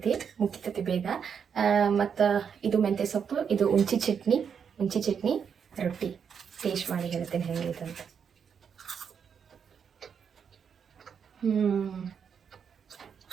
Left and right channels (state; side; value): quieter; left; 7.0 dB